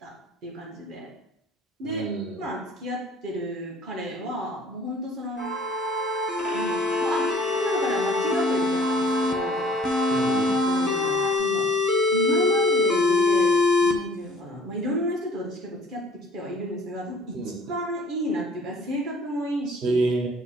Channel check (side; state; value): both; normal; correlation 0.52